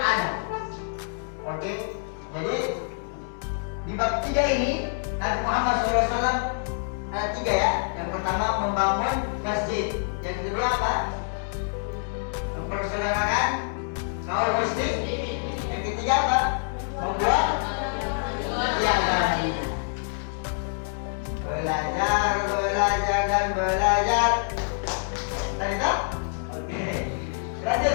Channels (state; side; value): silent; right; 61 dB below the other